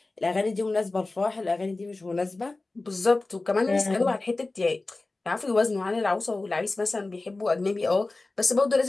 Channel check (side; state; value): right; quieter; 3.2 dB